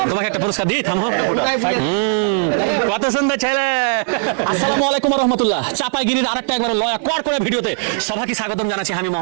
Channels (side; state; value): left; silent; digital silence